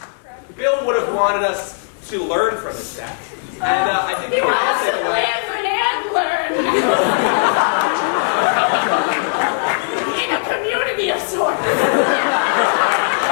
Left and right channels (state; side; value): silent; right; digital silence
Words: Bill would have wanted us to learn from his death, and I think we He can all wants take to away. live and learn. In a community of sorts.